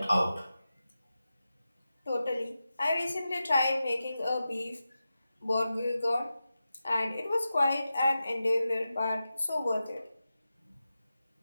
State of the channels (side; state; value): both; inverted; correlation -0.92